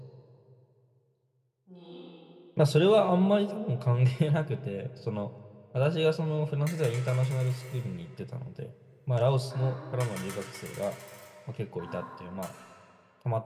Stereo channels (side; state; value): both; identical; correlation 1.00